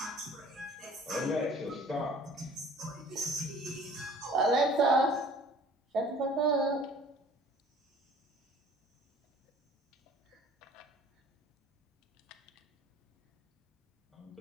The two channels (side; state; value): both; normal; correlation 0.49